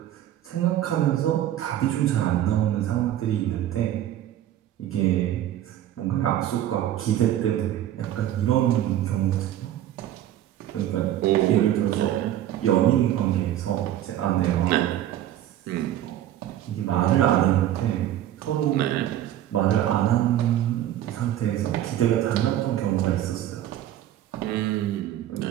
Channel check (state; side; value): quieter; left; 12.4 dB